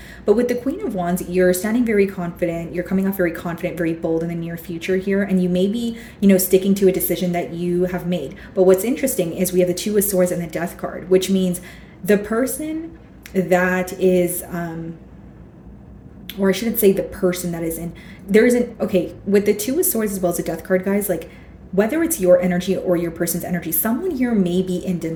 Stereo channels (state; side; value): identical; both; correlation 1.00